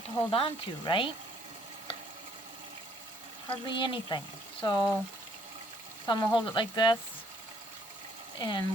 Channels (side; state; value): both; normal; correlation 0.64